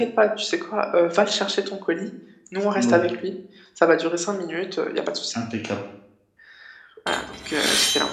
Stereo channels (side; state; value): both; identical; correlation 1.00